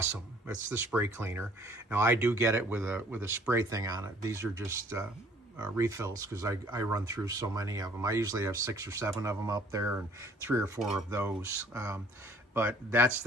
It's the spray cleaner. Now I do get it with a spray thing on it. These are just refills because I run through so many of them. I usually have 6 or 7 of them up there and 3 or 4 of those. But that's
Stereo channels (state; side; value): normal; both; correlation 0.56